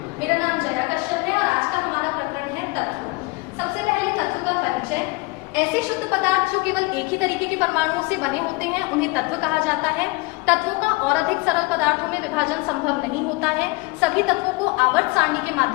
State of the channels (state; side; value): quieter; right; 25.1 dB